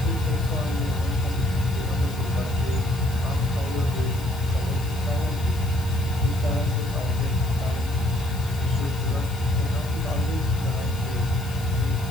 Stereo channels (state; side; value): noise; left; hiss, 17 dB below the sound